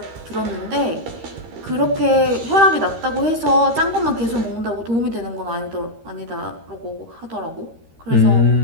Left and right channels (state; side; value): late; left; 13 ms